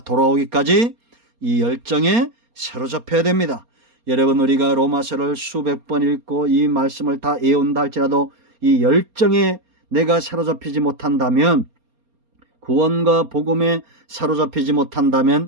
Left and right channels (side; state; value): left; late; 4.3 ms